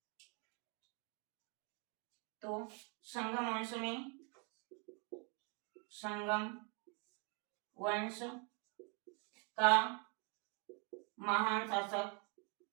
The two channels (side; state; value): left; quieter; 34.2 dB